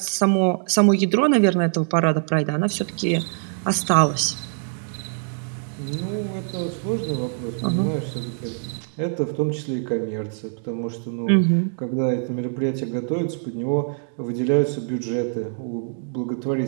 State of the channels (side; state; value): left; silent; digital silence